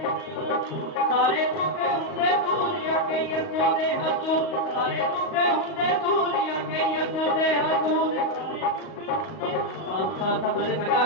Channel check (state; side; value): late; right; 38 ms